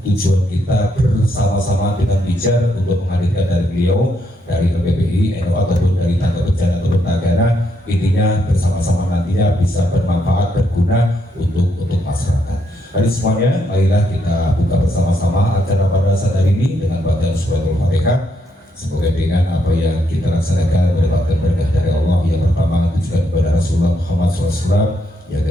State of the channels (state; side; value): normal; both; correlation 0.77